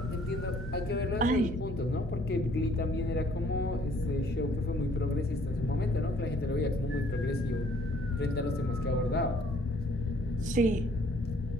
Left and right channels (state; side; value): normal; both; correlation 0.61